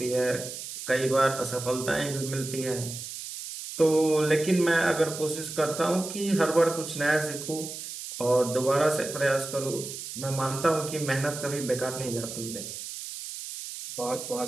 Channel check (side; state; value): right; noise; hiss, 9 dB below the sound